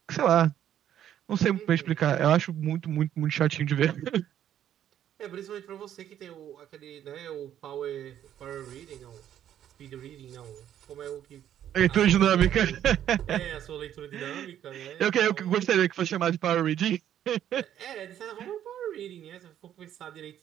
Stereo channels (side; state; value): left; quieter; 10.7 dB